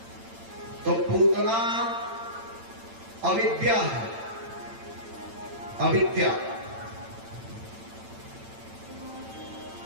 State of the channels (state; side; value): late; left; 8.9 ms